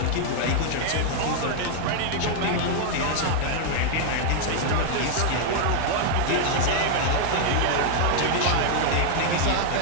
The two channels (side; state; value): both; different; correlation -0.01